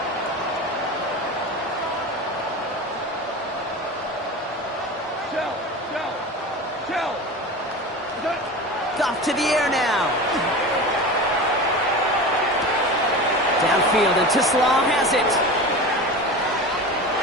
Off to the air now. Downfield, and Tisslaw has it.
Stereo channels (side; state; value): both; normal; correlation 0.30